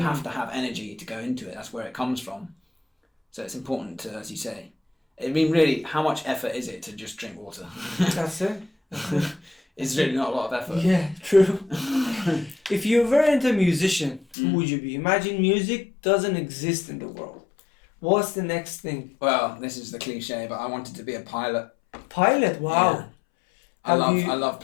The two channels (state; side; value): drops out; right; at 14.4 s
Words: have to have energy to go into it. That's where it comes from. So it's important to, as you say, I mean, really, how much effort is it to just drink water? That's it. It's really not a lot of effort. Yeah, true. If you were into a musician, who would you be? Imagine music doesn't exist in the world. What's the next thing? Well, this is the cliche, but I wanted to be a pilot. Pilot? Wow. Yeah. I love